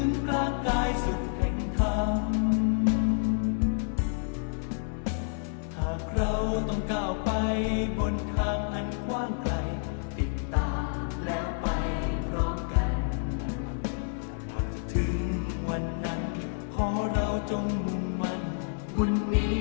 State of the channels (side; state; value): right; silent; digital silence